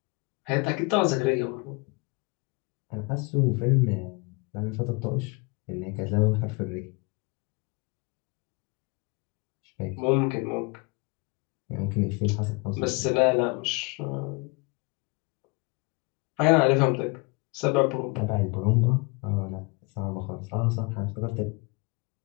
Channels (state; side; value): quieter; right; 28.0 dB